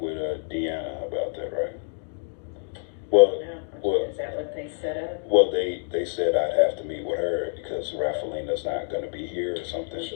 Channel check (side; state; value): right; silent; digital silence